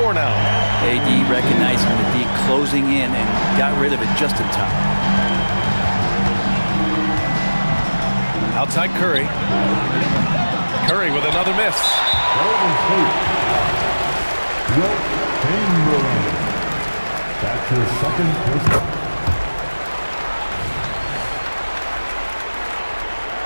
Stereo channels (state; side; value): inverted; both; correlation -1.00